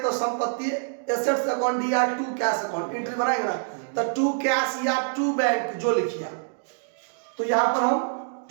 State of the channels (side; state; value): left; silent; digital silence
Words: संपत्ति एसेट्स अकाउंट या टू कैश अकाउंट एंट्री बनाएंगे ना, तो टू कैश या टू बैंक जो लिखिए। तो यहाँ पर हम